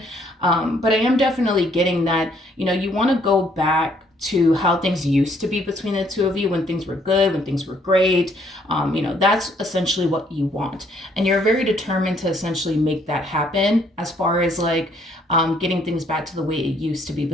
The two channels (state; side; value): normal; both; correlation 0.66